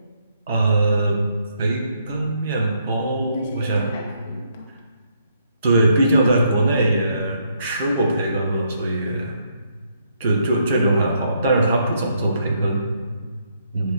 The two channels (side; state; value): both; inverted; correlation -0.74